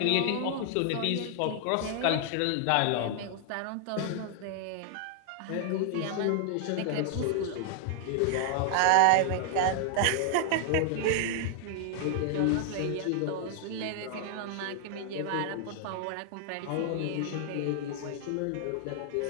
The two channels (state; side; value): different; both; correlation 0.00